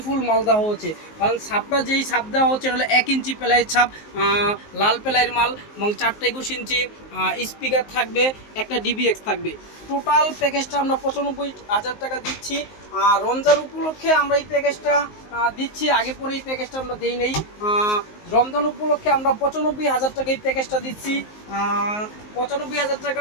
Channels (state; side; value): late; right; 19 ms